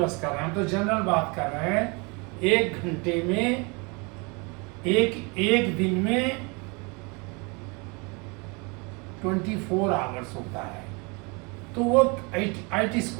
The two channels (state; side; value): quieter; left; 29.9 dB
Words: कर रहे हैं, हम तो जनरल बात कर रहे हैं। एक घंटे में, एक दिन में 24 आवर्स होता है। तो वो IT